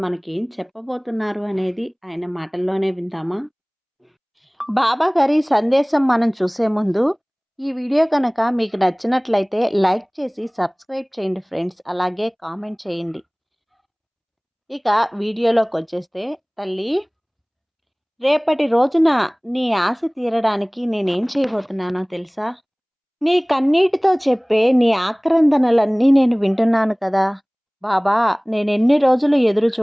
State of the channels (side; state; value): both; identical; correlation 1.00